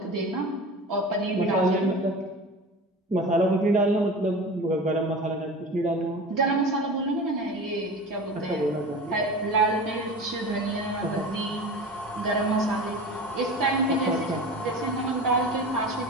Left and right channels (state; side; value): normal; both; correlation 0.33